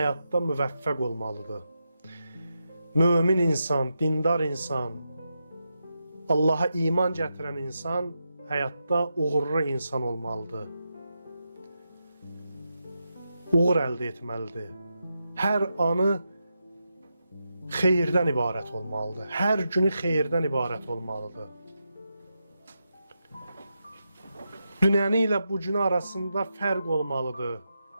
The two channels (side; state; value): both; inverted; correlation -0.87